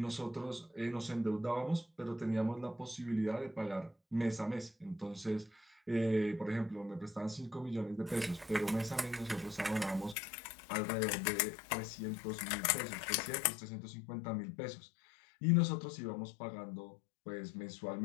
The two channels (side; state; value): right; drops out; at 10.2 s